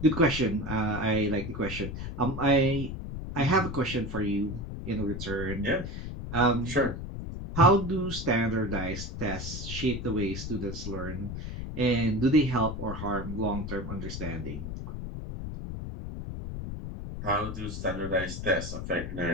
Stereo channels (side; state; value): left; noise; rumble, 7 dB below the sound